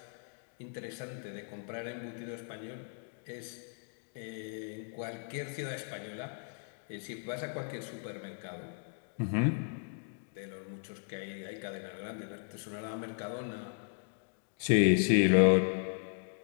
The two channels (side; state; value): right; silent; 54 dB below the other